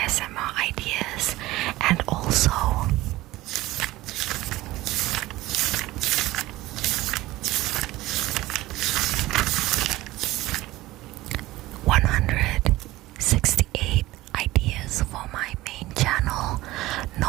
ideas, and also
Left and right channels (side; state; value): left; quieter; 17.8 dB